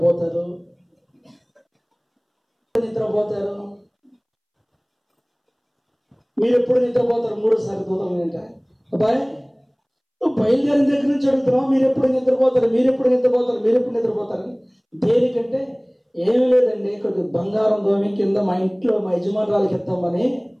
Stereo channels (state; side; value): identical; both; correlation 1.00